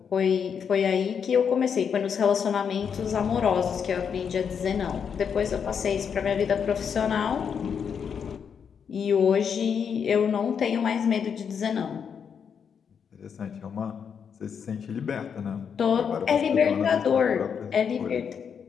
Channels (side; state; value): right; quieter; 7.1 dB